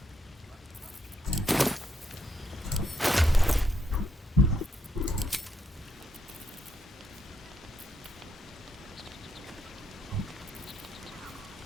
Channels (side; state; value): both; normal; correlation 0.77